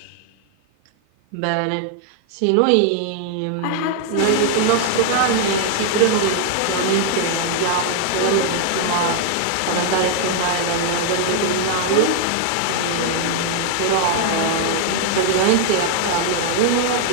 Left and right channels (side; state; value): both; different; correlation 0.00